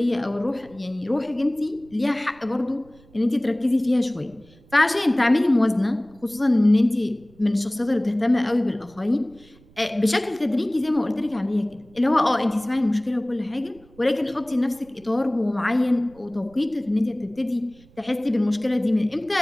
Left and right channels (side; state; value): right; noise; rumble, 27 dB below the sound